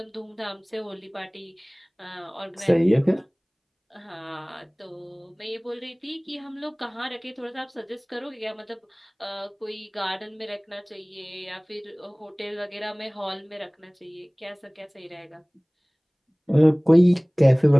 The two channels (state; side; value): identical; both; correlation 1.00